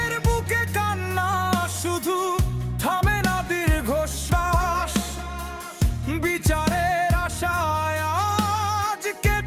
বুকে কান্না শুধু থামে না দীর্ঘশ্বাস। বিচারের আশায় আজ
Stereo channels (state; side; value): identical; both; correlation 1.00